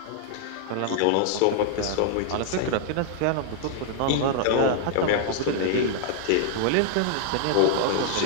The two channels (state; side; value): different; both; correlation -0.01